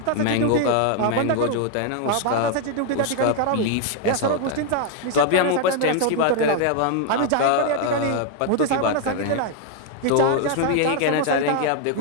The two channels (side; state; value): both; different; correlation 0.01